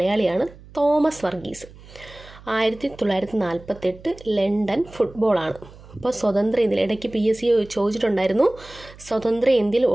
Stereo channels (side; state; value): right; noise; hum, 21 dB below the sound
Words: തോമസ് വർഗീസ്. 1948 ലണ്ടൻ ഫുട്ബോളാണ്. അപ്പോൾ സ്വതന്ത്ര ഇന്ത്യയിൽ ഇടയ്ക്ക് PSC ചോദിച്ചിട്ടുണ്ടായിരുന്നു. സ്വതന്ത്ര ഇന്ത്യയിൽ